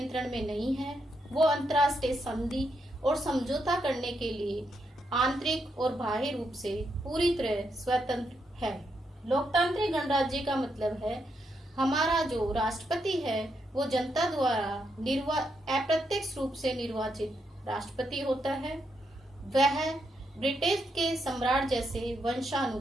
में नहीं है। वो अंतर्राष्ट्रीय संधि और समझौता करने के लिए आंतरिक और बाह्य रूप से पूरी तरह स्वतंत्र है। लोकतांत्रिक गणराज्य का मतलब है हमारा जो राष्ट्रपति है वो जनता द्वारा अप्रत्यक्ष रूप से निर्वाचित राष्ट्रपति होता है। वह ब्रिटिश के सम्राट जैसे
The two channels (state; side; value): normal; both; correlation 0.80